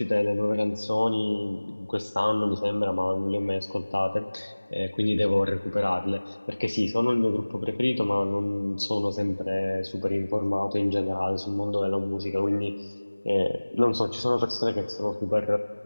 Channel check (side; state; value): both; inverted; correlation -1.00